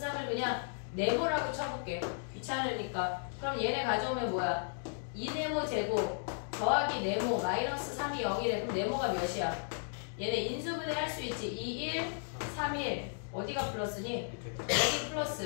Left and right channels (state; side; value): silent; right; digital silence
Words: 3을 그냥 네모라고 쳐볼게. 귀찮으니까. 그럼 얘네 가져오면 뭐야? 2네모 제곱 더하기 네모 마이너스 3이 0이래. 그럼 네모가 몇이야? 얘네 인수분해 할 수 있지. 2, 1, 3, 1 어디가 플러스니? 여기